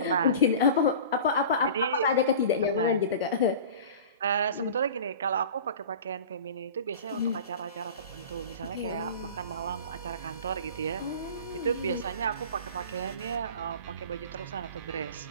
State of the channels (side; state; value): both; inverted; correlation -0.37